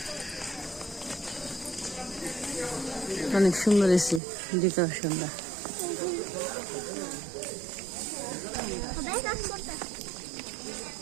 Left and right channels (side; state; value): left; drops out; at 4.2 s